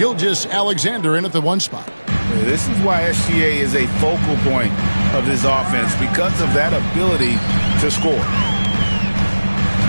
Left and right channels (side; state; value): both; inverted; correlation -1.00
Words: in at the 1 spot. This is why SGA is a focal point of this offense, because of that ability to score.